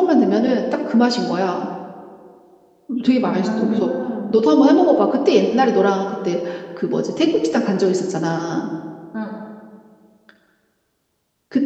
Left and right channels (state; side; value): identical; both; correlation 1.00